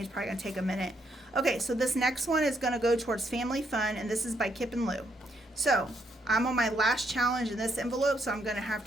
It's probably going to take a minute. Okay, so this next one is going to go towards Family Fun, and this is by Kip and Lou. So I'm on my last challenge in this envelope, so I'm going to have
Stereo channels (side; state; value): both; normal; correlation 0.75